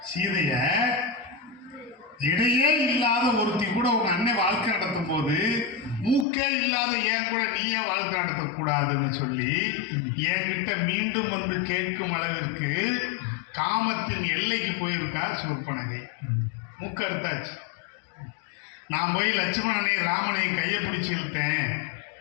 சீதைய இடையே இல்லாத ஒருத்தி கூட உங்க அண்ணன் வாழ்க்கை நடத்தும் போது மூக்கே இல்லாத ஏன் கூட நீயே வாழ்க்கை நடத்தக்கூடாதுன்னு சொல்லி என்கிட்ட மீண்டும் வந்து கேட்கும் அளவிற்கு காமத்தின் எல்லைக்கு போயிருக்கா சூர்பனகை. மூக்கு அறுத்தாச்சு. நான் போய் லட்சுமணனை ராமனையும் கையை பிடிச்சி இழுத்தேன்,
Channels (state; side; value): drops out; right; at 6.2 s